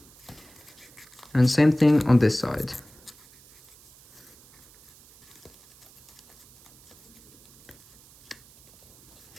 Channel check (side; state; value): right; noise; hiss, 25 dB below the sound